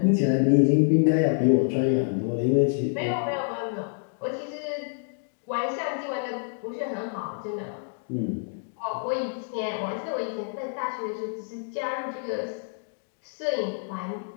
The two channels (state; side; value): silent; right; digital silence